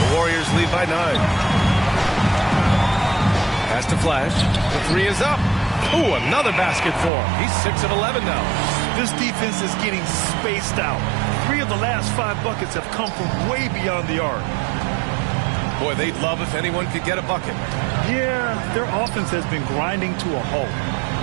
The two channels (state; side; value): drops out; left; at 7.1 s